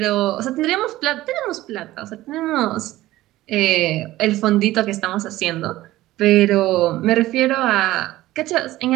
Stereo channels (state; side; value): quieter; left; 16.3 dB